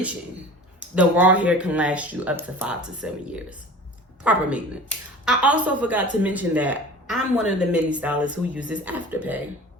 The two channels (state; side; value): normal; both; correlation 0.40